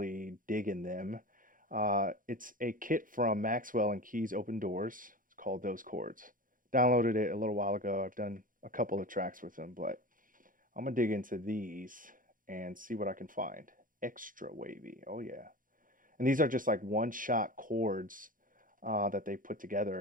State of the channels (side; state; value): left; late; 0.40 ms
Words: digging them. It's a kit from MXXWLL and KeysOpenDoors. It's called Those Chords. Downloaded it a little while ago. I've done a couple of tracks with them, but I'm gonna dig into these and see what I can find. Extra wavy, oh yeah. And these are just like one-shot chords that they put